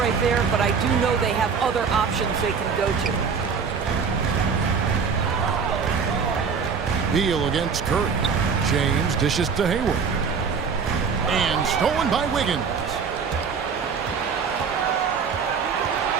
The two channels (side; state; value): left; quieter; 5.9 dB